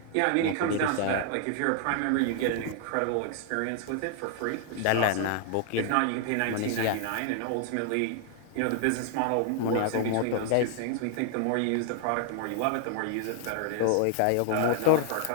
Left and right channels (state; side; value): different; both; correlation 0.00